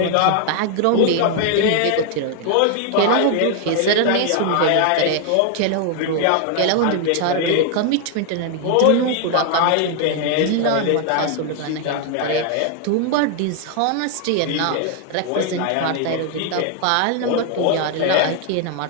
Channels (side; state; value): both; different; correlation 0.00